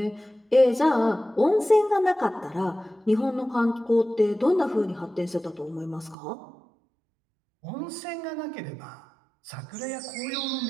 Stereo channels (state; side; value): drops out; left; at 6.2 s